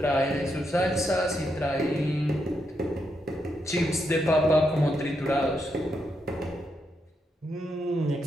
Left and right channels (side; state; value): both; normal; correlation 0.81